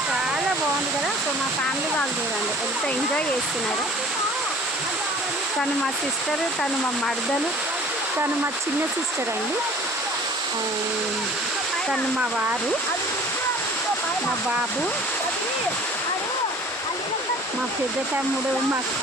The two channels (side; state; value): both; normal; correlation 0.48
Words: చాలా బాగుంది కదా. సో మా ఫ్యామిలీ వాళ్ళు చూడండి ఎంత ఎంజాయ్ చేస్తున్నారు. తను మా సిస్టర్, తను మా మరదలు, తను మా చిన్న సిస్టర్ అండి, తను మా వారు, మా బాబు, మా పెద్ద తమ్ముడు, మా